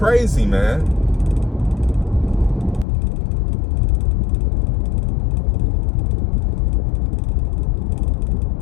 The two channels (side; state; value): right; drops out; at 2.9 s